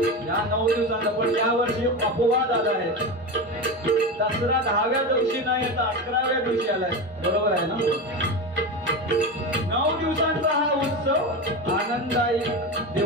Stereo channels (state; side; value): normal; both; correlation 0.21